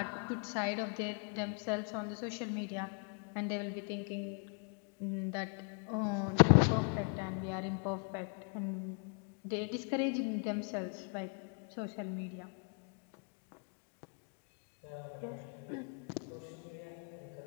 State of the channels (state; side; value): quieter; right; 39.0 dB